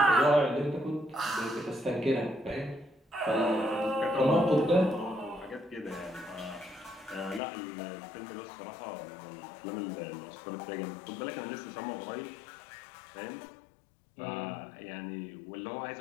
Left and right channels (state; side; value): drops out; right; at 7.4 s